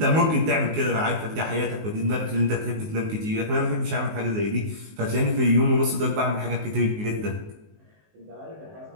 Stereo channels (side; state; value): left; late; 19 ms